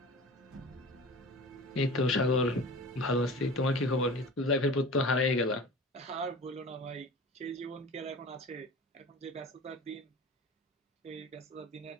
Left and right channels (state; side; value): normal; both; correlation 0.37